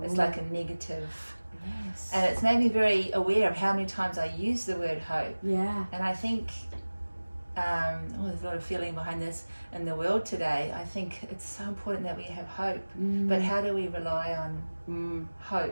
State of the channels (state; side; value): inverted; both; correlation -1.00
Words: It's like a negative. Yes. And it's made me very aware of how many times I use the word hope. Yeah. And I think there's a lot of feeling behind this in the world today. I think it's so important that we have hope. But how do we rely on